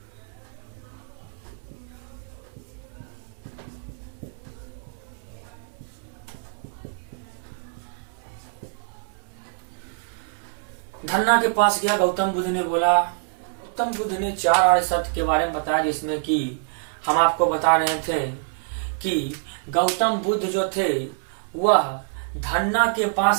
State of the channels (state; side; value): silent; left; 61 dB below the other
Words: धन्ना के पास गया। गौतम बुद्ध ने बोला, गौतम बुद्ध ने 4 आर्य सत्य के बारे में बताया, जिसमें कि हम आपको बता रहे थे कि गौतम बुद्ध जो थे वह धन्ना के